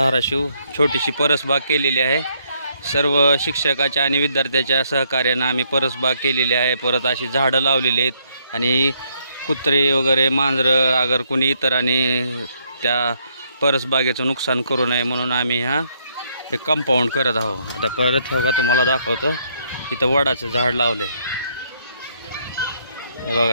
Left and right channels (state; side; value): inverted; both; correlation -0.72